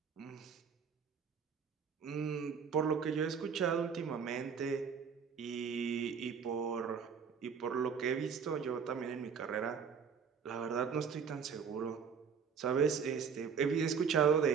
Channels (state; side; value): quieter; left; 6.5 dB